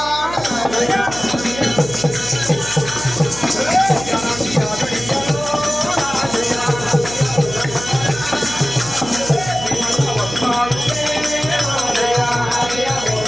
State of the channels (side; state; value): right; noise; hum, 12 dB below the sound